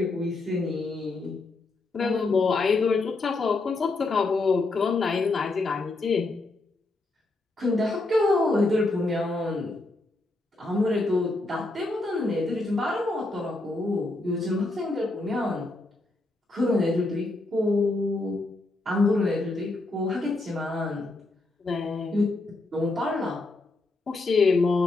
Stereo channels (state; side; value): quieter; right; 3.1 dB